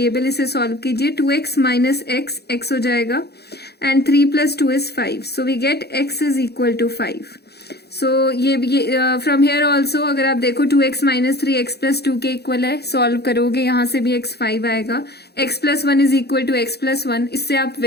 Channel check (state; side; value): late; right; 0.48 ms